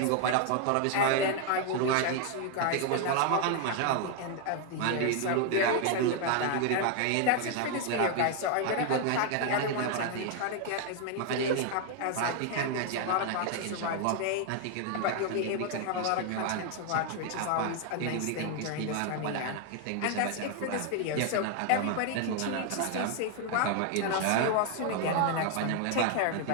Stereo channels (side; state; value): both; different; correlation 0.01